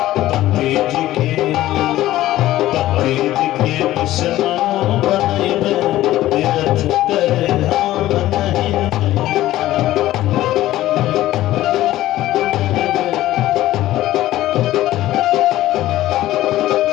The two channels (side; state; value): right; quieter; 15.0 dB